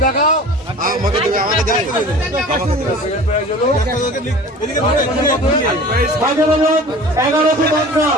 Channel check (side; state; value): both; normal; correlation 0.41